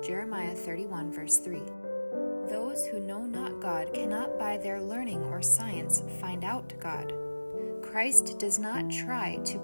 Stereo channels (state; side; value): inverted; both; correlation -1.00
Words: Jeremiah 31, verse 3. Those who know not God cannot by their learning or science find out God. Christ does not try